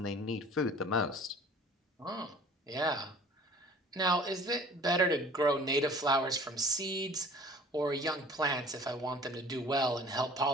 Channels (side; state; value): both; normal; correlation 0.47